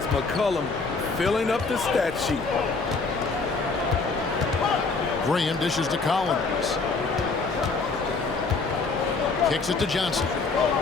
McCollum filling up the stat sheet. Graham dishes to Collins. Kicks it to Johnson.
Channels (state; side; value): quieter; right; 4.2 dB